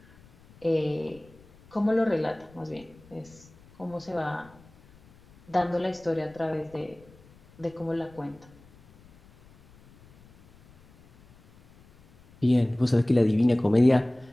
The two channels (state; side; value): noise; left; rumble, 26 dB below the sound